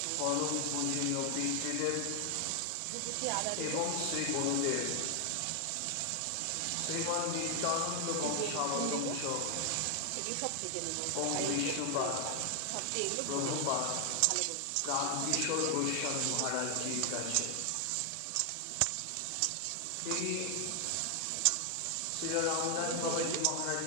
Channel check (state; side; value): different; both; correlation 0.00